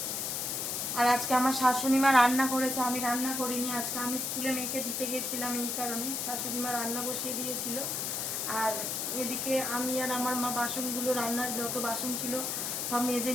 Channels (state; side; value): noise; left; hiss, 1 dB below the sound